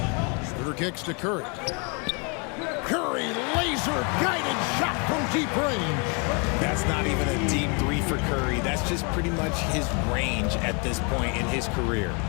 Schroeder kicks to Curry. Curry, laser-guided shot from deep range. That's not even a deep 3 for Curry. That's just pretty much his range at this point in his career.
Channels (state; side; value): quieter; right; 34.1 dB